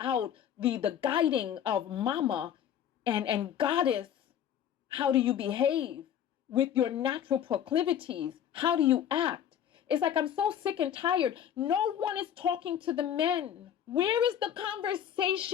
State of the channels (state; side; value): quieter; right; 9.6 dB